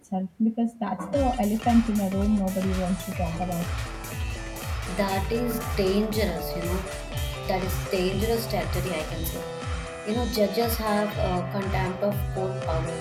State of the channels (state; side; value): identical; both; correlation 1.00